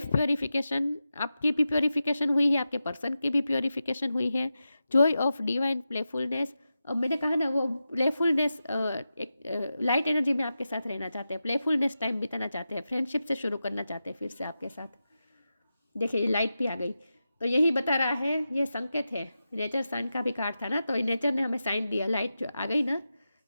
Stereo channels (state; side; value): inverted; both; correlation -0.91